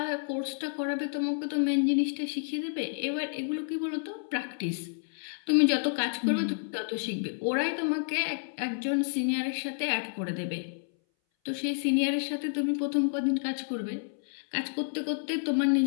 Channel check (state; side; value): silent; right; 58 dB below the other